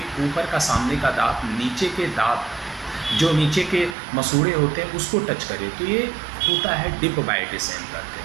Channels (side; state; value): left; drops out; at 4.0 s